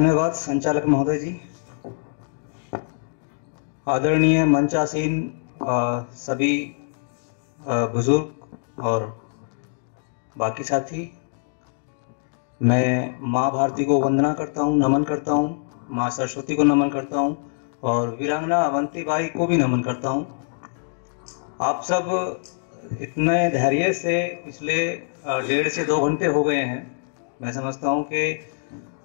संचालक महोदय जी। आदरणीय मंचासीन सभी बुजुर्ग और बाकी साथी, मैं माँ भारती को वंदना करता हूँ, नमन करता हूँ, माँ सरस्वती को नमन करता हूँ और वीरांगना अवंती बाई को भी नमन करता हूँ। आप सब इतने धैर्य से पिछले 1.5 से 2 घंटे हो गए हैं। मैं समझता हूँ कि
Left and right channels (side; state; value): right; silent; digital silence